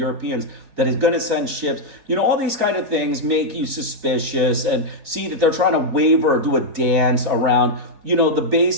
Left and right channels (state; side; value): late; left; 3.5 ms